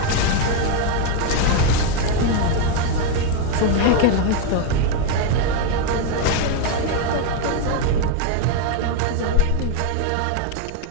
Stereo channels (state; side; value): different; both; correlation 0.01